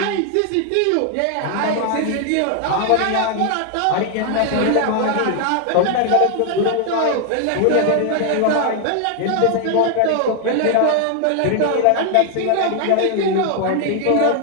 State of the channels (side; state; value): both; different; correlation 0.00